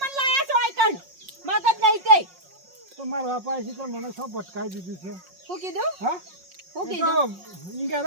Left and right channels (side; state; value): left; late; 5.5 ms